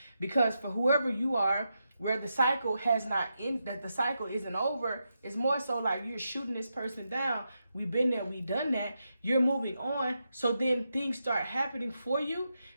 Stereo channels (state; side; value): inverted; both; correlation -0.85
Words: Because for whoever you are, where the cycle that the cycle isn't over, it's more so like you're shooting this person down. We've been there, we've done that. You're moving on. So then things start happening for you.